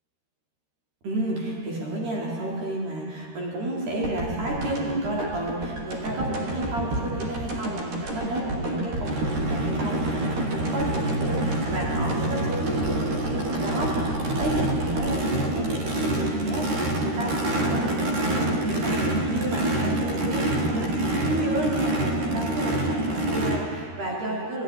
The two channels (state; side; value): late; left; 13 ms